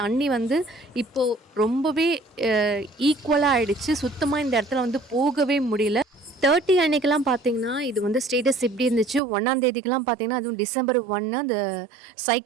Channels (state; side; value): drops out; left; at 9.2 s